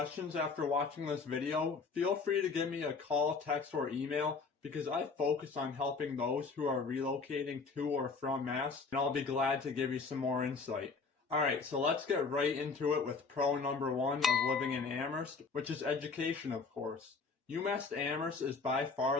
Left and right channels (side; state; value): right; quieter; 4.6 dB